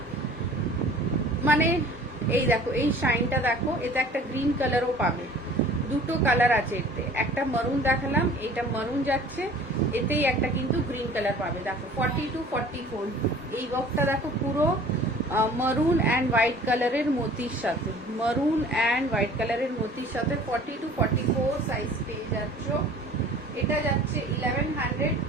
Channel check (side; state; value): both; normal; correlation 0.48